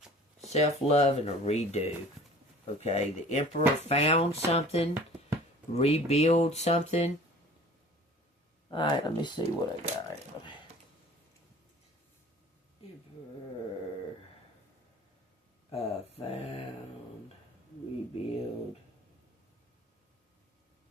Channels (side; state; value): both; normal; correlation 0.47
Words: Self-love and a redo. Okay? The Emperor found something. Rebuild something. Alright, let me see what I got. Emperor. Found. Rebuild.